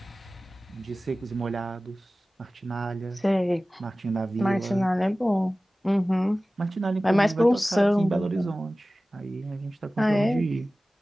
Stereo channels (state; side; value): normal; both; correlation 0.97